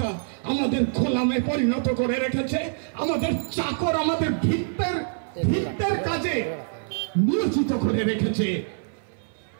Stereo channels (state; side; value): silent; left; 58 dB below the other